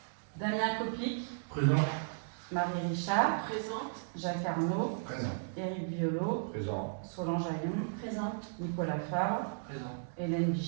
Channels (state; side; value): silent; left; digital silence